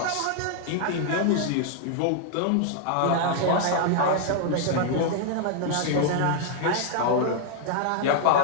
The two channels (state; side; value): different; both; correlation 0.00